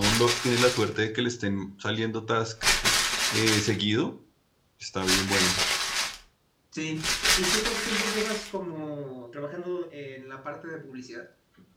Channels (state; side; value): identical; both; correlation 1.00